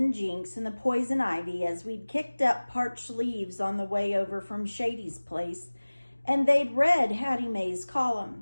Jinx and the poison ivy as we'd kicked up parched leaves on the way over from Shady's place, and they'd read Hattie Mae's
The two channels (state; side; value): inverted; both; correlation -1.00